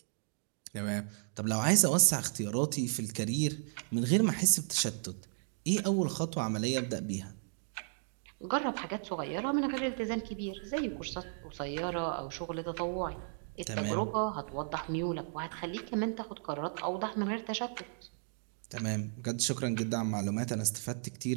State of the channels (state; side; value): silent; left; digital silence